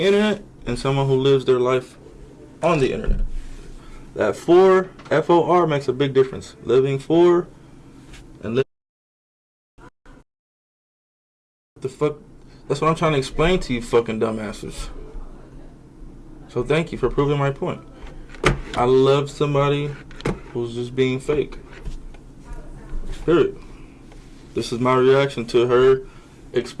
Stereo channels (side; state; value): both; identical; correlation 1.00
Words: internet and someone who lives their life on the internet. That for, F-O-R, makes a big difference. Living for and living. The fuck? That's what I'm trying to explain to you fucking dumbasses. So thank you for proving my point. I love somebody who's just being fake. Period. This is my reaction to her